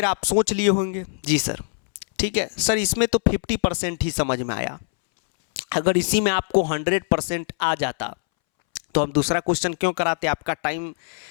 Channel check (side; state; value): right; silent; 64 dB below the other